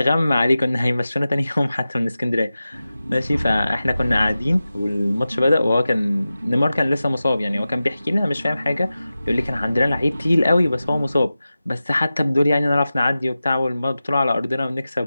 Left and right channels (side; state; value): both; inverted; correlation -0.94